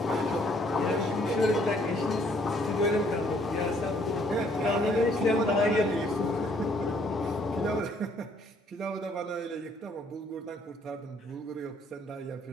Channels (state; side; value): normal; both; correlation 0.64